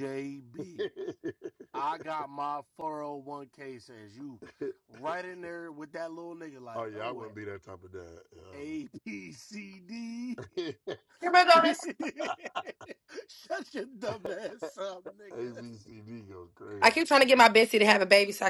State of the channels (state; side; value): identical; both; correlation 1.00